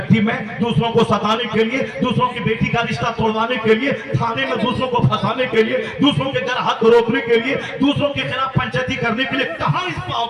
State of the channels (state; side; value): identical; both; correlation 1.00